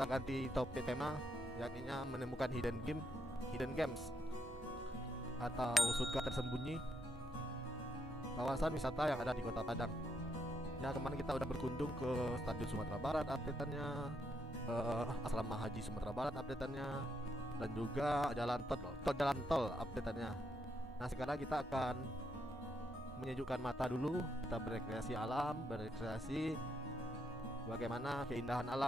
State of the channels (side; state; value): both; normal; correlation 0.78